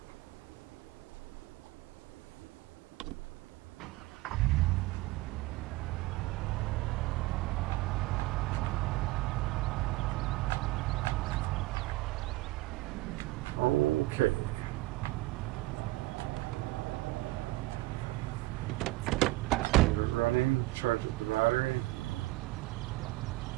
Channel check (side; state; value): left; quieter; 19.7 dB